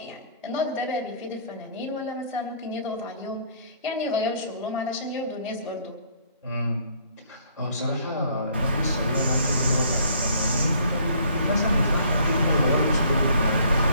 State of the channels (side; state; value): both; inverted; correlation -0.60